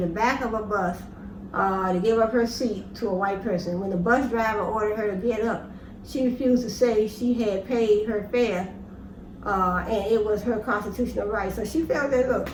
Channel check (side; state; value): both; identical; correlation 1.00